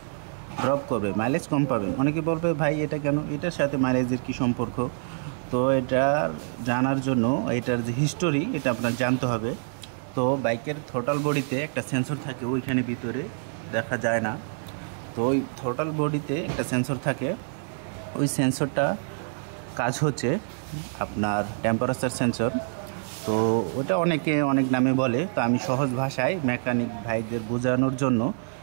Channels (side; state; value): left; silent; digital silence